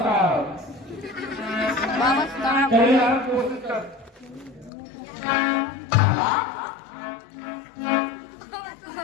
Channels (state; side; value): drops out; right; at 4.7 s